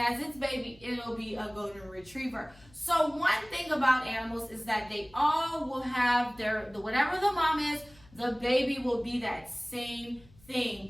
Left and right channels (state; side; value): noise; left; hum, 26 dB below the sound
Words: its baby, it'll be a golden retriever. So one thing about animals is that they all will have whatever the mom is, the baby will be that same